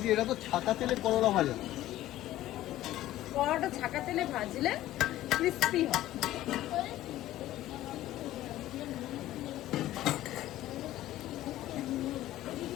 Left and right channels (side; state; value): right; quieter; 14.6 dB